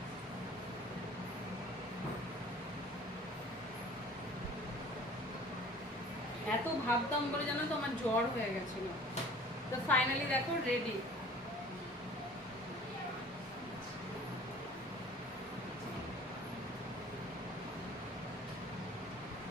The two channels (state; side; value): normal; both; correlation 0.48